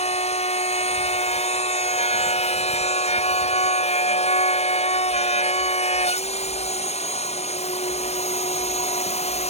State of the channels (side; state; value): right; late; 0.31 ms